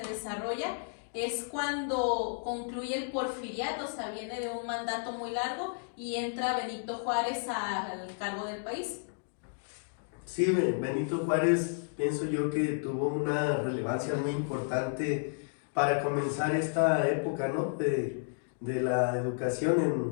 es cuando concluye el porfiriato, o sea, viene de un mandato muy largo y entra Benito Juárez al cargo del país. Sí, Benito Juárez, pienso yo que tuvo una relevancia muy importante para comenzar esta época, ¿no?, de la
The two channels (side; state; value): right; silent; digital silence